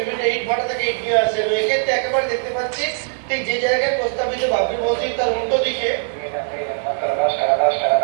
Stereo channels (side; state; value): left; silent; 56 dB below the other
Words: ইট ভাটা থেকে ইট নিয়ে আসছেন। এক্ষেত্রে একেবারে দেখতে পাচ্ছি ঠিক যে জায়গায় প্রস্তাবিত বাবরি মসজিদ তার উল্টো দিকে